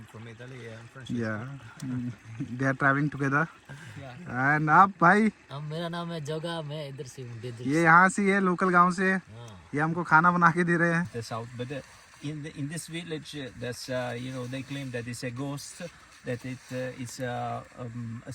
from Italy. I'm from. या they are travelling together. And आप भाई? मेरा नाम है जोगा, मैं इधर से हूँ डेजर्ट। ये यहाँ से है, लोकल गांव से। ये हमको खाना बना के दे रहे हैं। The south, but in this village, there's they claim that it's a ghost that it is a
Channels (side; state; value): both; identical; correlation 1.00